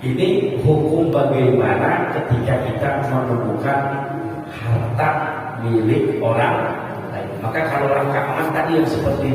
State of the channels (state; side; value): identical; both; correlation 1.00